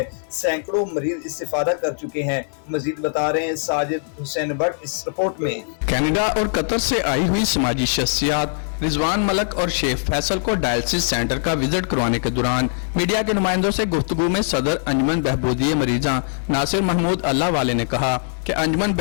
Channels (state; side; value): silent; right; digital silence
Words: سینکڑوں مریض استفادہ کر چکے ہیں۔ مزید بتا رہے ہیں ساجد حسین بٹ اس رپورٹ میں۔ کینیڈا اور قطر سے آئی ہوئی سماجی شخصیات رضوان ملک اور شیخ فیصل کو ڈائلسس سینٹر کا وزٹ کروانے کے دوران میڈیا کے نمائندوں سے گفتگو میں صدر انجمن بہبودی مریضاں ناصر محمود اللہ والے نے کہا کہ انجمن